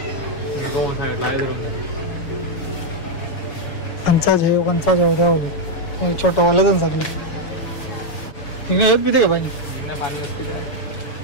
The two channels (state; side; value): late; right; 6.8 ms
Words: कंचा जेव द्यावले छोटं वाला पण सगळे जिंकण्या येत पिते का पाणी